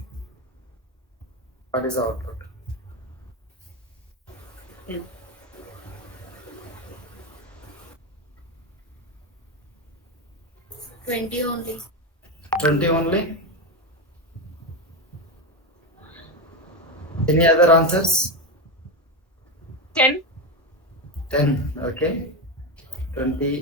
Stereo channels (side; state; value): both; normal; correlation 0.14